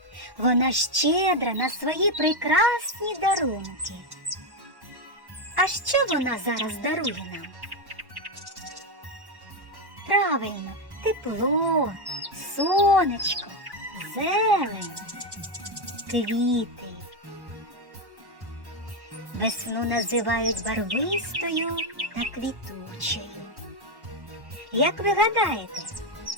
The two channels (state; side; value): late; left; 1.1 ms